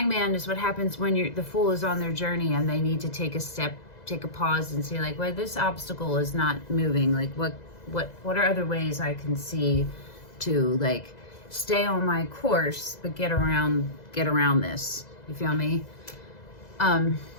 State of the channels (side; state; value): right; late; 2.0 ms